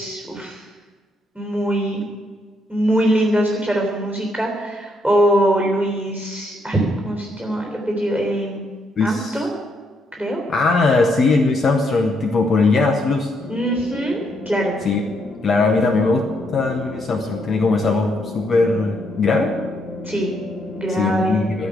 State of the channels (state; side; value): normal; both; correlation 0.75